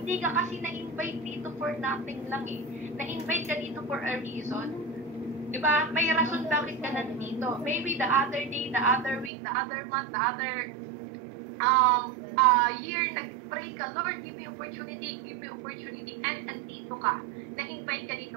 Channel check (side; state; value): left; drops out; at 9.3 s